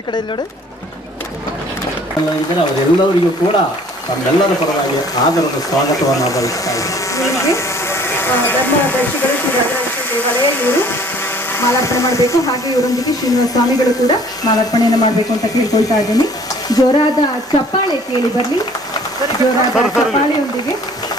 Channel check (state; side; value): normal; both; correlation 0.54